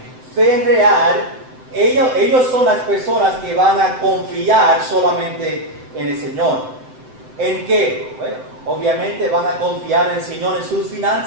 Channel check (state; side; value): late; left; 7.8 ms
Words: fe real, ellos son las personas que van a confiar solamente en el Señor. ¿En qué? Bueno, obviamente van a confiar en el Señor en sus